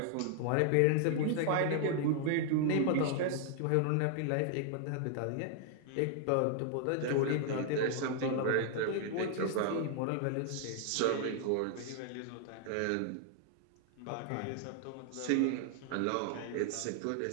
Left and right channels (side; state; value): both; different; correlation 0.00